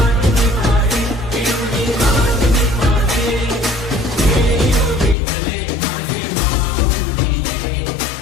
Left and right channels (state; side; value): drops out; right; at 5.2 s